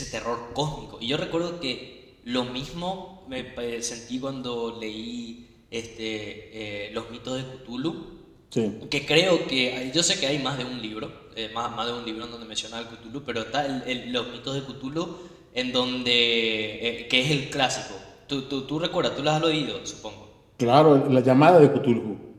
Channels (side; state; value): both; identical; correlation 1.00